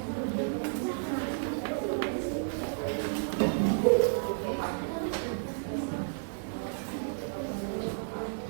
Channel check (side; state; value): left; silent; digital silence